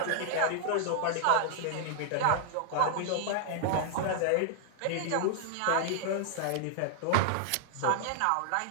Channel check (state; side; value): different; both; correlation -0.01